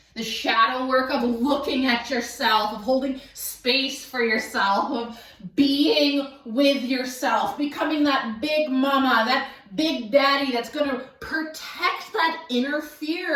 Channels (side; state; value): both; identical; correlation 1.00